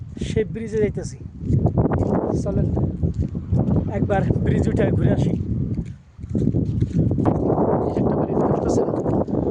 সেই ব্রিজে যাইতেছি। চলেন একবার ব্রিজ উঠে ঘুরে আসি। একটা বাড়ি দেখতে পাচ্ছেন,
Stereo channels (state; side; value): identical; both; correlation 1.00